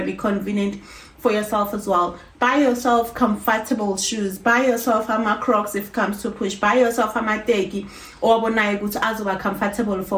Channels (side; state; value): both; identical; correlation 1.00